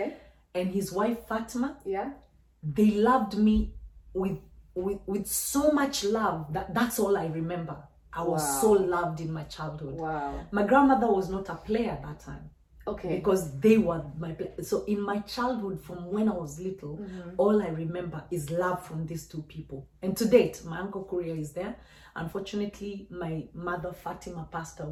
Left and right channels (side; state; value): both; identical; correlation 1.00